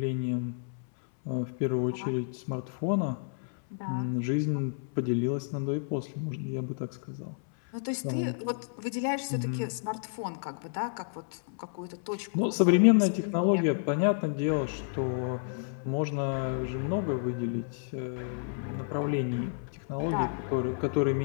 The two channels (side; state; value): right; silent; 57 dB below the other